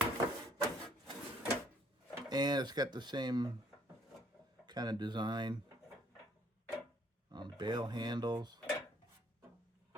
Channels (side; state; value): both; normal; correlation 0.63